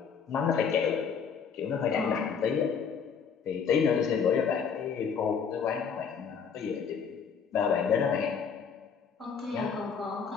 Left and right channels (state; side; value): quieter; right; 6.5 dB